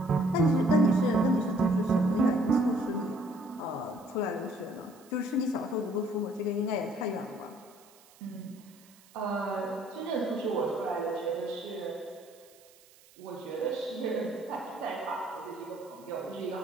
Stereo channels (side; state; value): right; noise; hiss, 26 dB below the sound